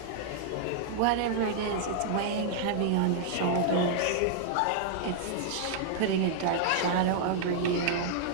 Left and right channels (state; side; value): different; both; correlation -0.01